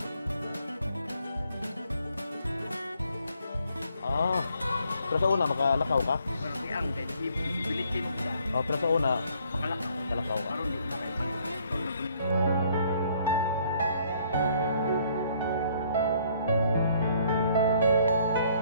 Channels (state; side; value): inverted; both; correlation -0.64